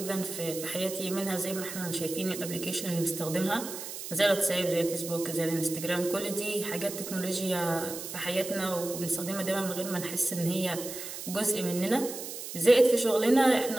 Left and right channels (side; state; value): right; noise; hiss, 9 dB below the sound